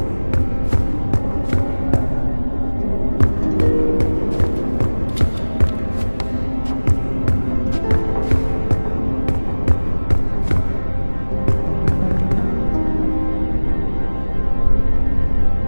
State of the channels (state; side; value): inverted; both; correlation -1.00